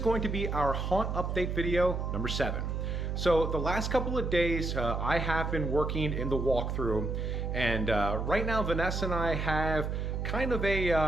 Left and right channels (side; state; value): right; noise; hum, 2 dB below the sound